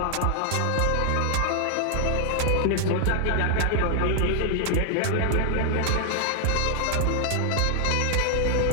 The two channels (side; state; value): both; different; correlation 0.00